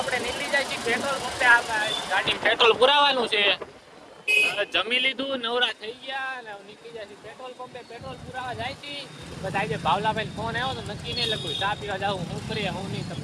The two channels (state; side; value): identical; both; correlation 1.00